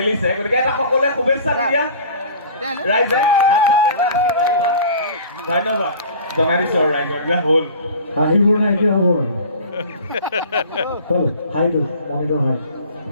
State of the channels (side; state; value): both; inverted; correlation -0.43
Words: গতিকে এটা সকলোৱে শুভেচ্ছা দি দিয়া ৰাইজে। হাত চাপৰি এটা আশীৰ্বাদ দিবা। ধন্যবাদ জনাই দিছোঁ আৰু ৰাইজক যে হ'ল। হাঁহিবোৰ নাই এতিয়া হ'ব আৰু হ'ল হাইটো অমিতৰ হাই।